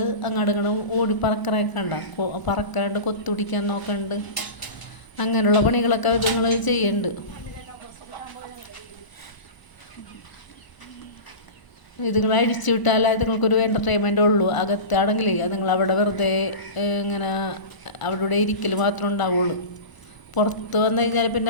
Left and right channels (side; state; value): right; late; 1.0 ms